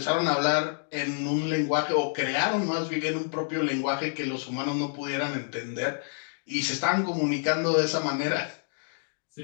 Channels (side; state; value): right; silent; digital silence